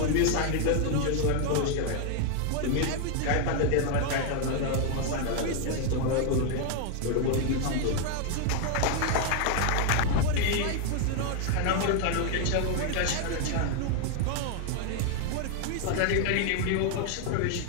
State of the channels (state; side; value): different; both; correlation 0.00